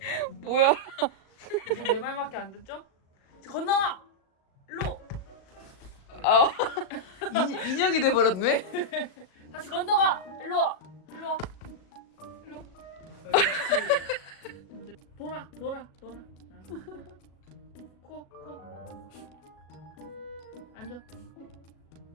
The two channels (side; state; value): right; late; 37 ms